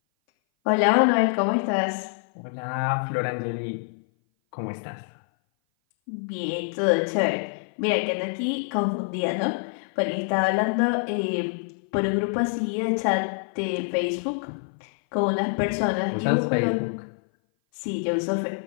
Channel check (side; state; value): right; silent; 57 dB below the other